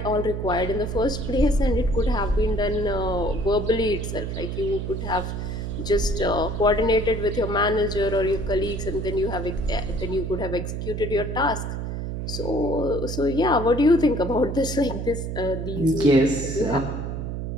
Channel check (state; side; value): noise; right; hum, 4 dB below the sound